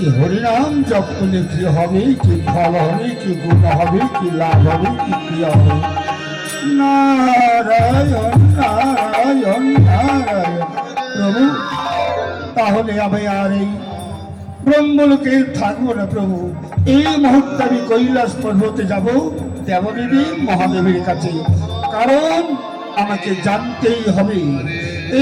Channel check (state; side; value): identical; both; correlation 1.00